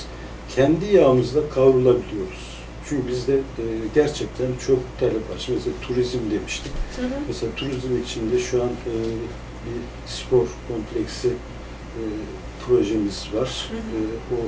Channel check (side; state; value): both; identical; correlation 1.00